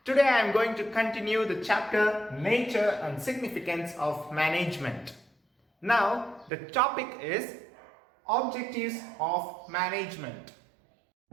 Today I am going to continue the chapter Nature and Significance of Management. Now the topic is Objectives of Management.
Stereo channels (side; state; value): left; drops out; at 6.5 s